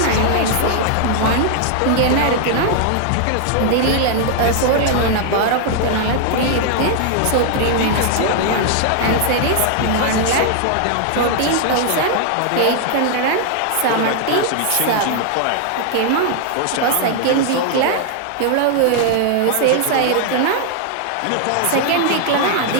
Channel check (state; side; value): different; both; correlation 0.00